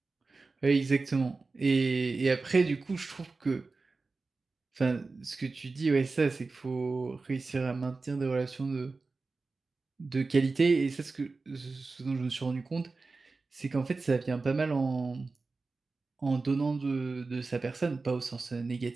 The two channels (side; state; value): left; quieter; 3.9 dB